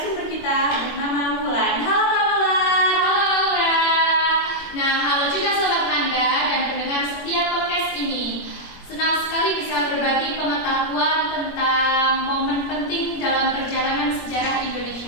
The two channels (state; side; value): late; right; 21 ms